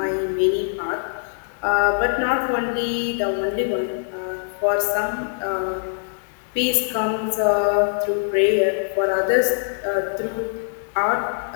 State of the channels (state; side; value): silent; right; digital silence